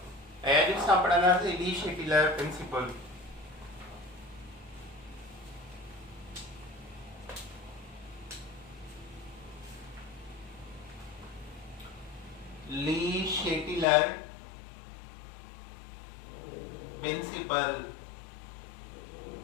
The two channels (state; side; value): drops out; right; at 13.9 s